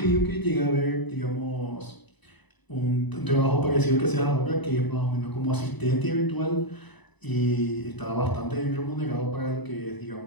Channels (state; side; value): late; right; 1.0 ms